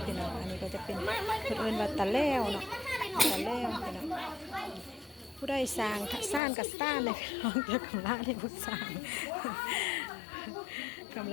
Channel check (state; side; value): drops out; right; at 6.4 s